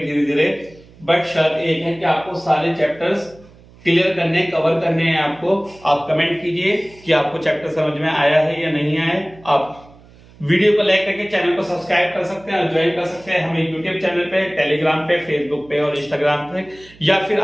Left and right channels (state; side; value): noise; right; hum, 25 dB below the sound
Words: धीरे, बट शर्त एक है कि आपको सारे चैप्टर्स क्लियर करने, कवर करने हैं आपको। आप कमेंट कीजिए कि आपको चैप्टर समझ में आया है या नहीं आया है। आप वीडियो को लाइक करके चैनल को सब्सक्राइब कर सकते हैं और ज्वाइन कर सकते हैं हमें यूट्यूब चैनल पे, टेलीग्राम पे, फेसबुक पे और इंस्टाग्राम पे, या फिर